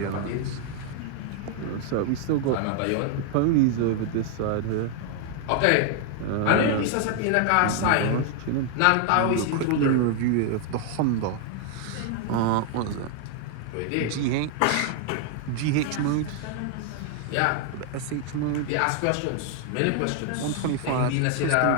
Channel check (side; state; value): both; different; correlation 0.00